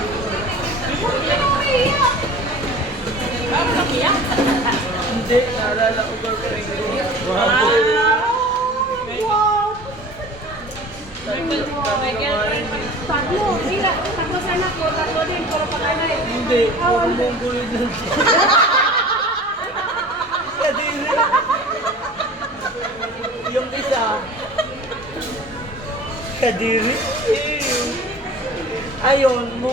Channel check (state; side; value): normal; both; correlation 0.41